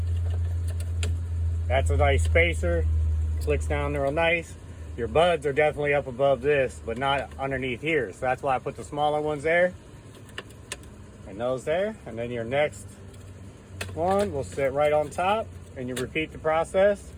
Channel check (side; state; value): both; identical; correlation 1.00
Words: that's a nice spacer, clicks down real nice. Your buds are definitely up above this, but not underneath here. So that's why I put the smaller ones there and those there. And then your next one will sit right on top, and you repeat the process